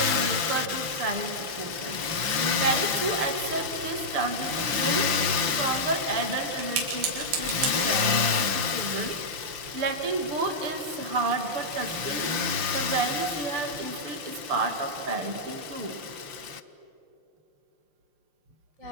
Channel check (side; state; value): left; late; 5.9 ms